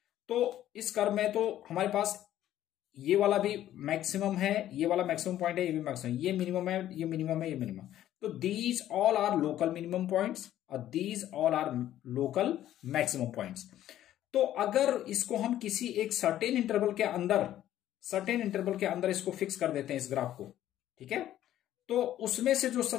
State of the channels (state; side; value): quieter; right; 12.5 dB